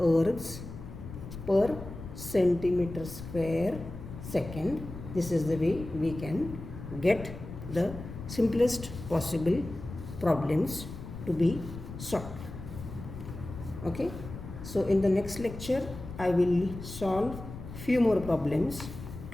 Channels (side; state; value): left; noise; rumble, 11 dB below the sound